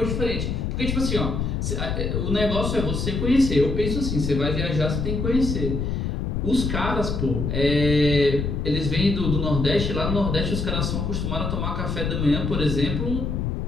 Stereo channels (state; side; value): noise; left; rumble, 1 dB below the sound